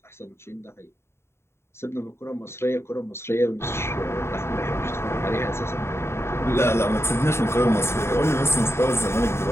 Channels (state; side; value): late; right; 0.12 ms